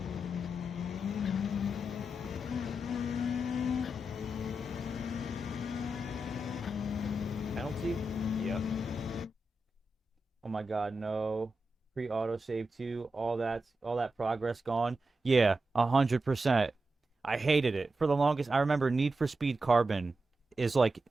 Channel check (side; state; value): both; normal; correlation 0.89